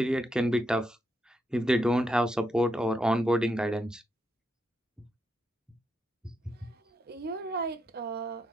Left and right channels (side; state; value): both; normal; correlation 0.81